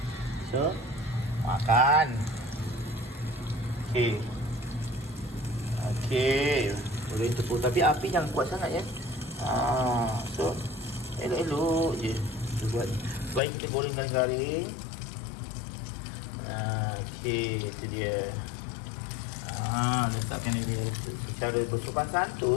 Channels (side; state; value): right; drops out; at 13.4 s